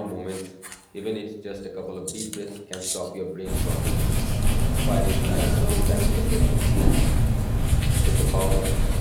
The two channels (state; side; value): identical; both; correlation 1.00